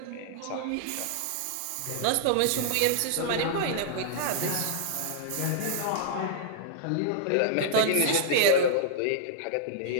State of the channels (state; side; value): different; both; correlation -0.01